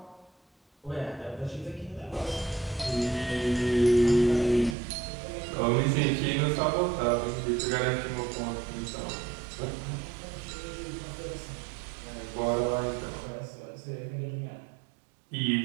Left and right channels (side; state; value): left; drops out; at 4.8 s